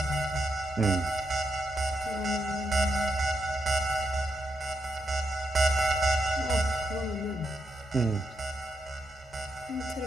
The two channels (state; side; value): normal; both; correlation 0.83